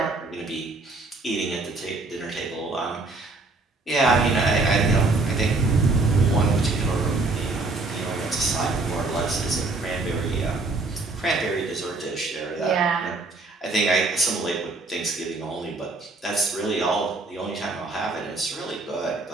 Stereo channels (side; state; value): left; quieter; 3.4 dB